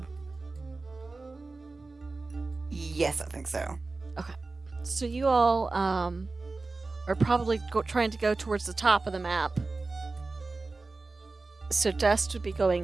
Yes, I think so. So you all are probably trying to go towards the top of the map. So Dust would be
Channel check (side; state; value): left; quieter; 3.6 dB